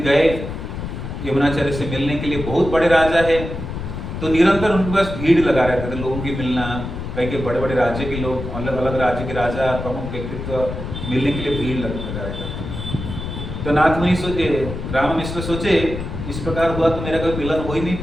गए यमुनाचार्य से मिलने के लिए। बहुत बड़े राजा है तो निरंतर उनके पास भीड़ लगा रहते थे, लोगों की मिलना, कई के बड़े बड़े राज्य के लोग, अलग अलग राज्य के राजा, प्रमुख व्यक्तित्व मिलने के लिए भीड़ लगा रहता था। तो नाथमुनि सोचे, राम मिश्र सोचे, इस प्रकार हुआ तो मेरा कोई मिलन हो ही नहीं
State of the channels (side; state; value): left; noise; rumble, 7 dB below the sound